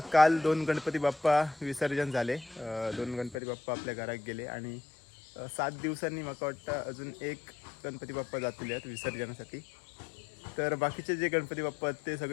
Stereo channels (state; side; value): drops out; right; at 3.4 s